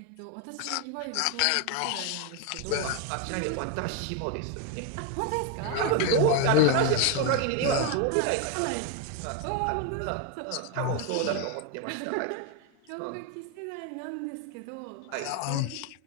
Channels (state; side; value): different; both; correlation 0.01